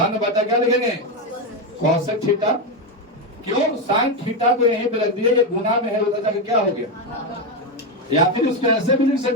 बटा क्या लिखेंगे? Cosec theta. क्यों? साइन थीटा को यहीं पे रख दिया, ये गुना में है, उधर जाके क्या हो गया? या फिर इसको ऐसे भी लिख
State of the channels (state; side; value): normal; both; correlation 0.09